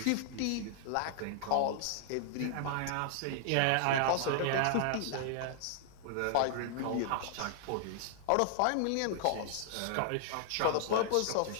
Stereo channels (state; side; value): different; both; correlation 0.00